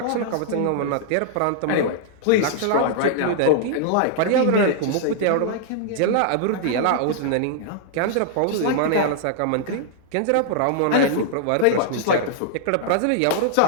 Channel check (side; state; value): both; different; correlation -0.01